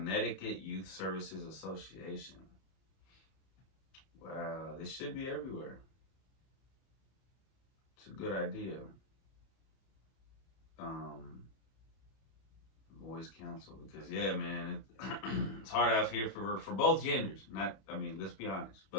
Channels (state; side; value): late; right; 31 ms